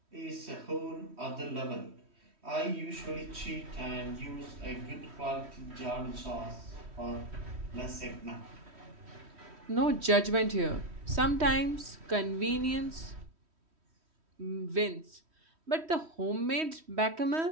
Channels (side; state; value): left; late; 3.1 ms